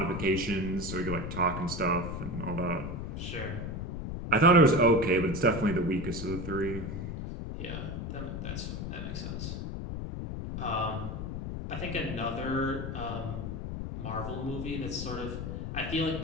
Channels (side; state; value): left; noise; rumble, 5 dB below the sound